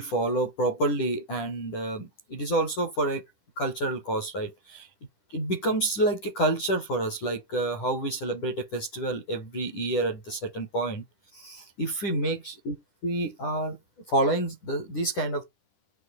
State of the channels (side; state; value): right; late; 10 ms